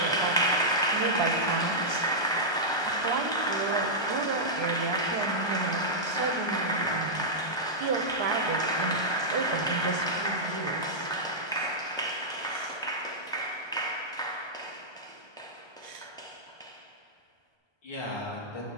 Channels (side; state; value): right; late; 1.3 ms